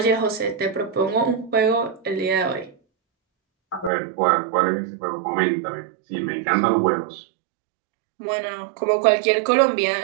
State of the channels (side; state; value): left; drops out; at 3.9 s